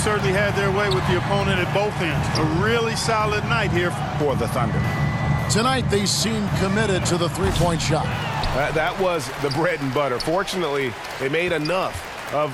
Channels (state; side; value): identical; both; correlation 1.00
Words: had their way with the opponent at both ends. A really solid night here for the Thunder. Tonight, they seem committed to the three-point shot. That was the bread and butter. Fortunately, they made enough